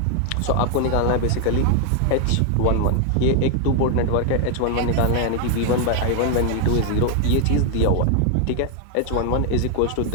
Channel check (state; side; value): different; both; correlation 0.00